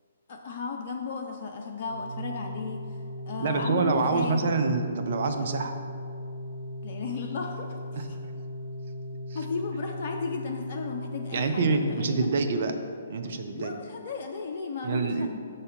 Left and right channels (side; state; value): both; inverted; correlation -0.61